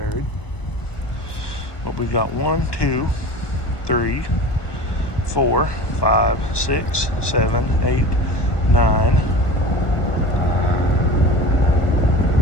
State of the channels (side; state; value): right; late; 1.2 ms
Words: But we've got 1, 2, 3, 4, 5, 6, 7, 8, 9.